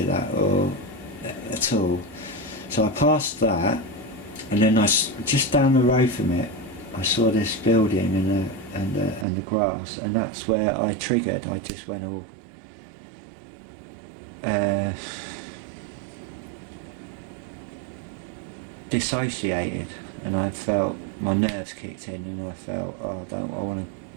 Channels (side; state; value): left; drops out; at 9.2 s